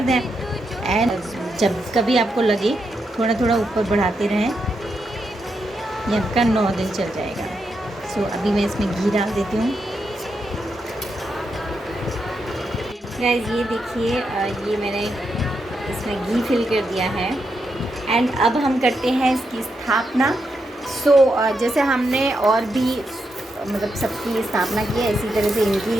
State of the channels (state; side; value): normal; both; correlation 0.84